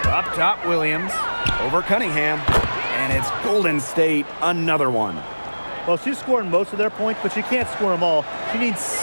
Up top, Williams. Over Cunningham. And it's Golden State, another one. Well, she's scoring most of their points, but she can't score them all. She needs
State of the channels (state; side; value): inverted; both; correlation -1.00